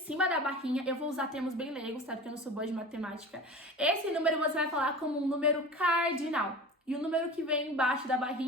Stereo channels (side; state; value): both; normal; correlation 0.35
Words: da barrinha, eu vou usar termos bem leigos, tá? Porque eu não sou boa de matemática. Esse número você vai falar como um número cardinal. E o número que vem embaixo da